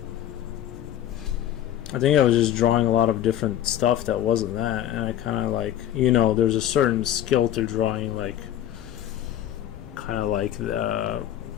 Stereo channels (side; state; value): right; quieter; 11.5 dB